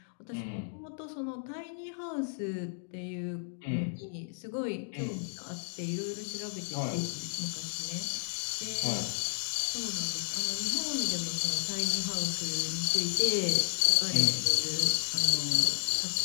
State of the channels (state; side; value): silent; right; digital silence